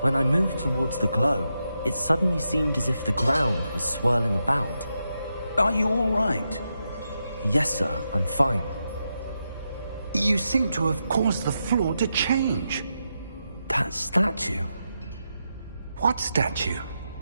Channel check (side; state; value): both; inverted; correlation -0.86